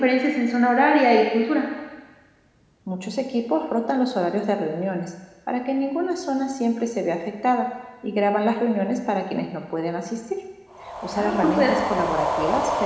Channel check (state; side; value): identical; both; correlation 1.00